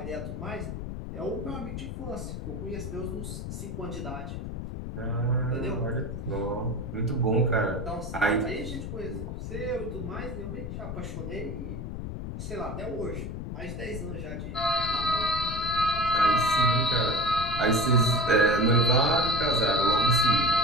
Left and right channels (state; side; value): noise; left; rumble, 6 dB below the sound